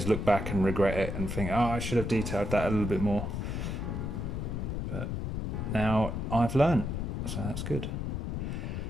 look back and regret it and think, oh, I should have detailed that a little bit more. But now I've learned, so that's good.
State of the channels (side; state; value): left; noise; rumble, 3 dB below the sound